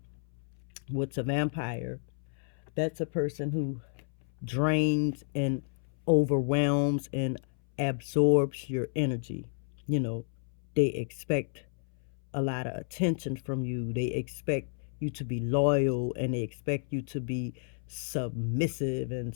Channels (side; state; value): right; silent; 57 dB below the other